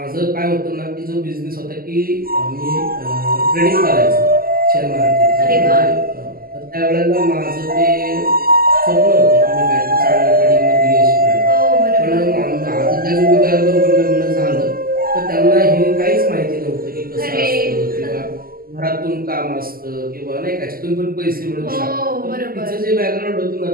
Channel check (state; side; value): late; left; 0.42 ms